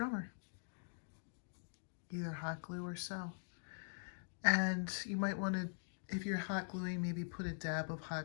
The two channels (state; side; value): silent; right; digital silence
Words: either hot glue or sew. And you might want to, if you're hot gluing, maybe put a dab of